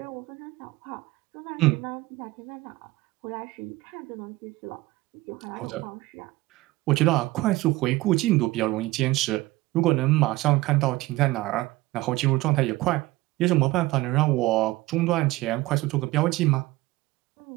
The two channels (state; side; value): quieter; left; 19.1 dB